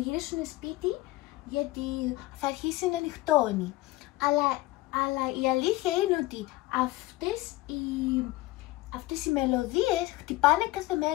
σπίτι γιατί θα αρχίσει να νυχτώνει. Αλλά η αλήθεια είναι ότι αυτές οι μελωδίες χτυπάνε κάθε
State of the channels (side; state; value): right; quieter; 18.7 dB